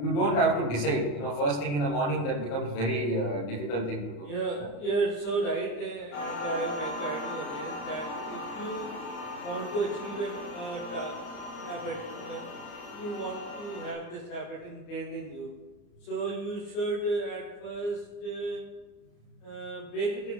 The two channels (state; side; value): late; right; 34 ms